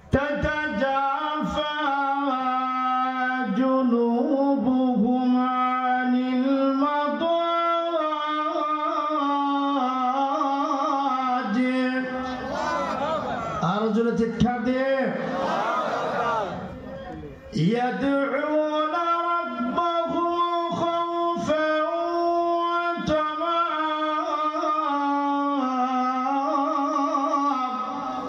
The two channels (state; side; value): identical; both; correlation 1.00